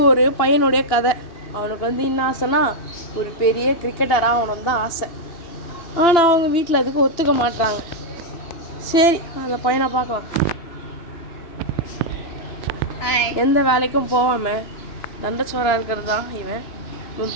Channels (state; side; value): late; right; 2.9 ms